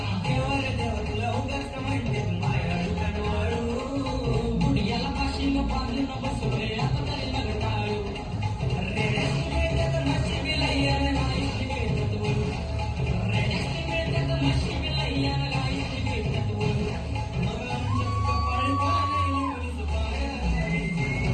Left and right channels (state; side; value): identical; both; correlation 1.00